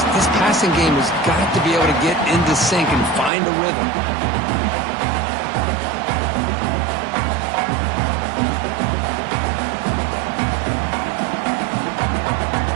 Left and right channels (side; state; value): left; drops out; at 3.3 s